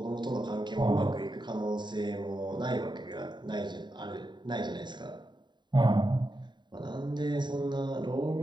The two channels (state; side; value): late; left; 0.22 ms